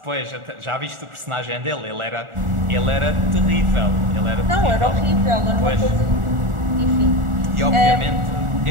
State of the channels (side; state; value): left; late; 1.4 ms